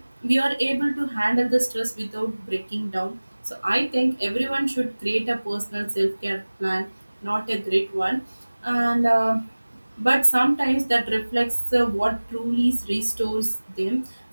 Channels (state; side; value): inverted; both; correlation -1.00